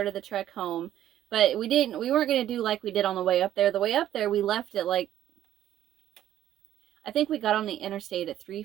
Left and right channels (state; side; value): quieter; left; 12.1 dB